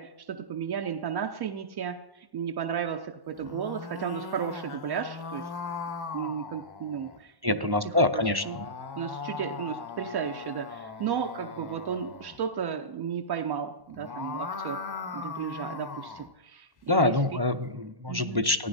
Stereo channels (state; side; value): late; left; 1.1 ms